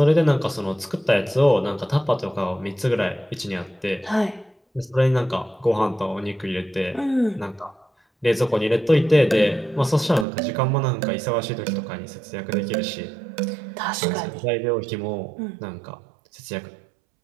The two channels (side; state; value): left; drops out; at 10.2 s